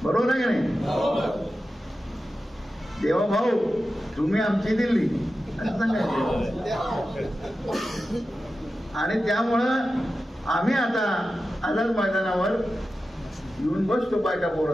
बरोबर आहे का नाही? देवा भाऊ तुम्ही आमची दिल्ली असं सांगायचं. आणि त्यामुळं आम्ही आता आझाद मैदानावर येऊन बसतो बायका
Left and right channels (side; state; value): both; normal; correlation 0.92